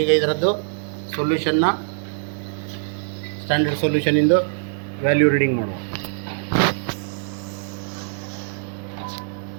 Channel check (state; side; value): silent; left; digital silence